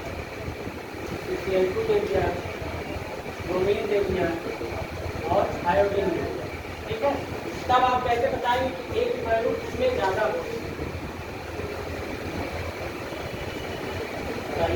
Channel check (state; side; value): identical; both; correlation 1.00